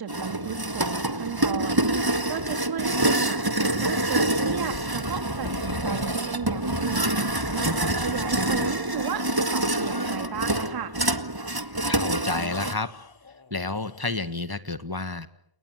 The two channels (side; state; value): left; late; 1.0 ms